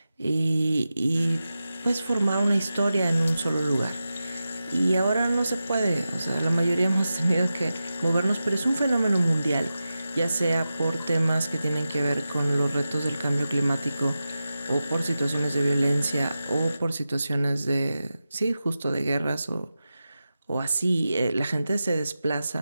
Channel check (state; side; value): inverted; both; correlation -0.92